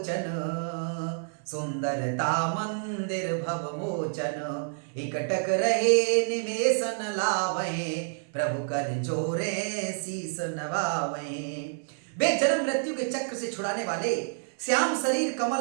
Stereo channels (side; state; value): left; silent; 59 dB below the other